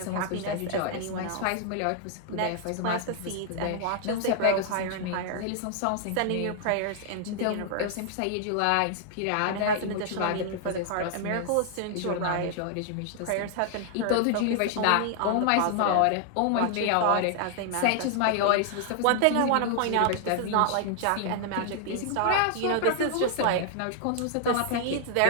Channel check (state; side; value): different; both; correlation 0.00